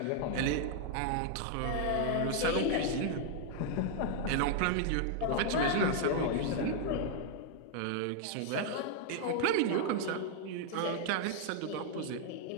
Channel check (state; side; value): different; both; correlation 0.00